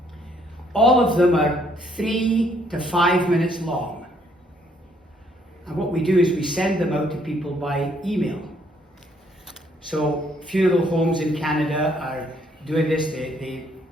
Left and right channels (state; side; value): normal; both; correlation 0.68